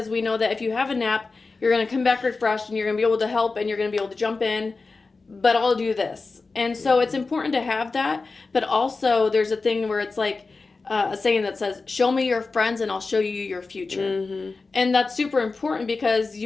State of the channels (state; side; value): quieter; right; 4.0 dB